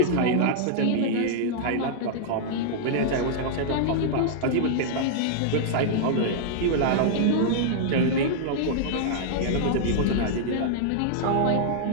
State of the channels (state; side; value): different; both; correlation -0.01